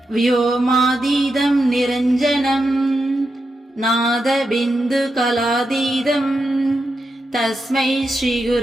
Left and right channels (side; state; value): both; normal; correlation 0.87